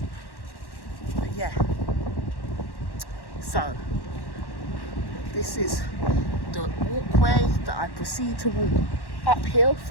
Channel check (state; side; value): late; right; 1.1 ms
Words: But yeah. So this is the walkway that I proceed to walk uphill